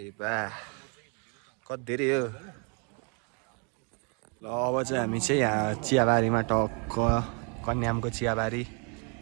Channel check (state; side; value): quieter; left; 36.1 dB